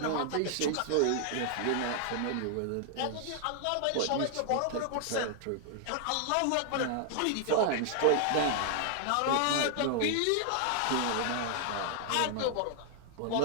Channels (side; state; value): both; different; correlation 0.00